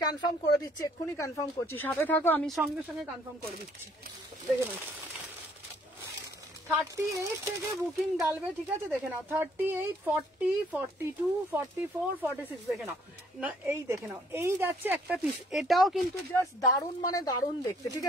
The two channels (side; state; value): both; normal; correlation 0.63